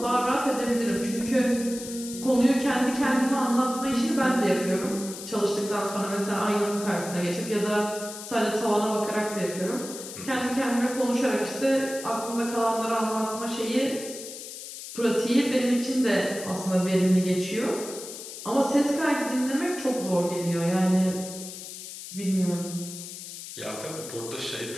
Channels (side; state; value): left; noise; hiss, 11 dB below the sound